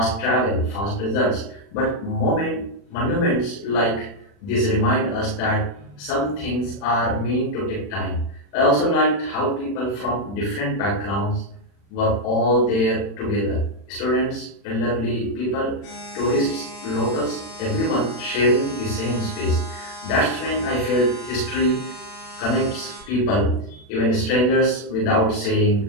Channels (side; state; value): right; late; 40 ms